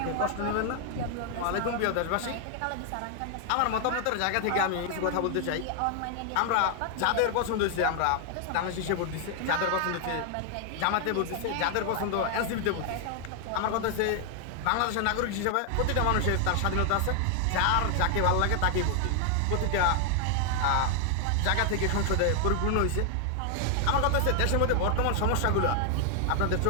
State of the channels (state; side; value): different; both; correlation 0.00